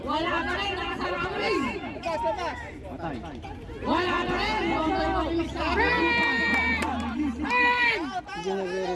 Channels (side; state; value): both; identical; correlation 1.00